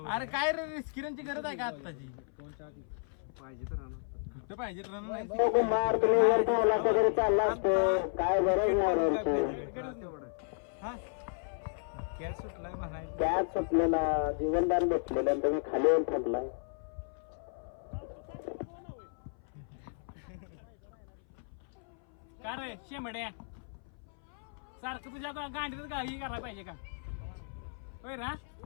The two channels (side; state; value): right; silent; 55 dB below the other